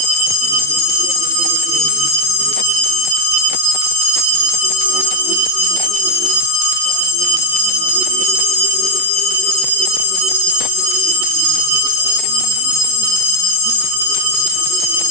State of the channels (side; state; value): both; normal; correlation 0.00